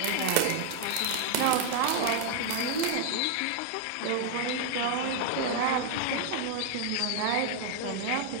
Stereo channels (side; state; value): both; different; correlation 0.00